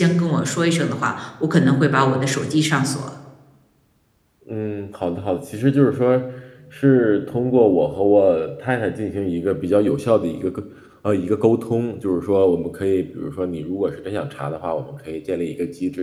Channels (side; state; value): both; identical; correlation 1.00